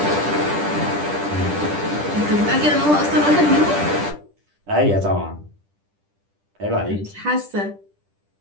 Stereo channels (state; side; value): late; left; 10 ms